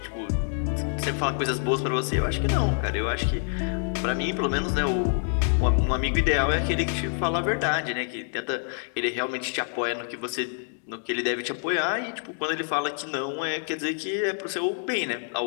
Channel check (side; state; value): right; silent; 56 dB below the other